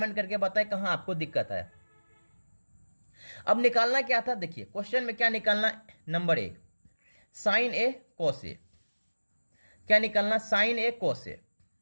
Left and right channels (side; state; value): both; inverted; correlation -1.00